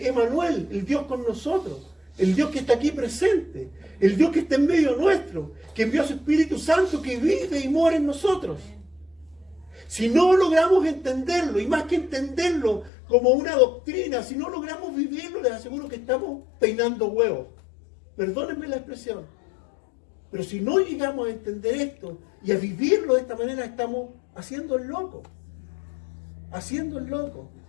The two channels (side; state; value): right; drops out; at 12.9 s